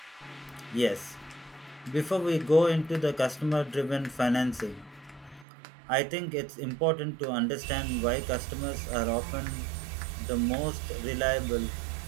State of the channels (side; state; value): left; drops out; at 5.5 s